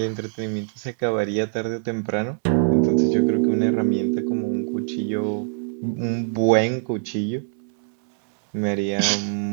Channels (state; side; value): silent; left; 63 dB below the other